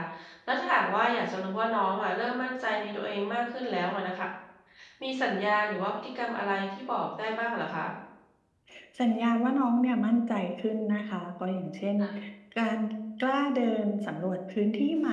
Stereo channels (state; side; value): identical; both; correlation 1.00